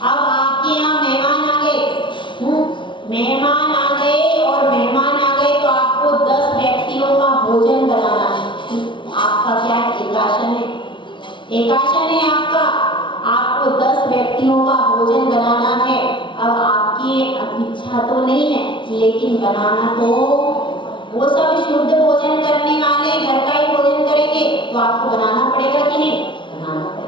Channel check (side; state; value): right; late; 0.24 ms